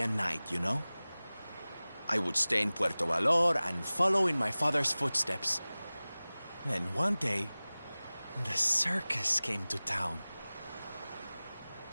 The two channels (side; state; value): both; inverted; correlation -0.99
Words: a knight, you know? I would stay in Puerto Valor and follow in my father's footsteps. Then one day, the circus came to town.